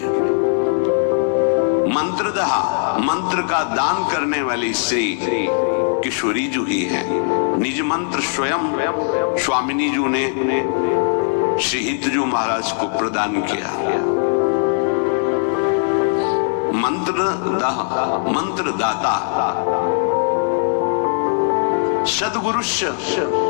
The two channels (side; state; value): right; silent; 63 dB below the other